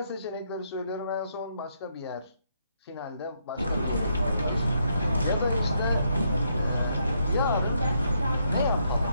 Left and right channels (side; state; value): both; inverted; correlation -0.75